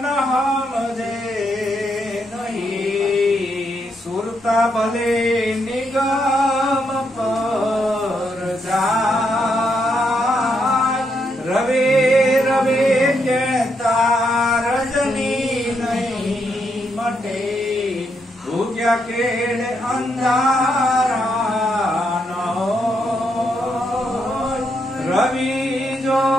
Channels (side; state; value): both; normal; correlation 0.78